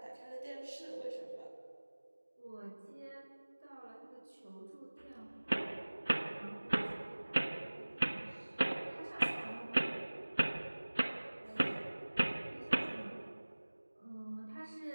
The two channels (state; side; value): inverted; both; correlation -1.00